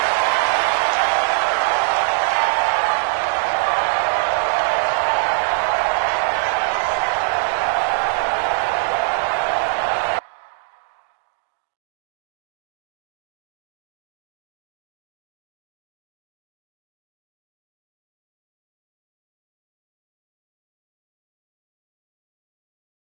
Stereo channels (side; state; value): left; silent; digital silence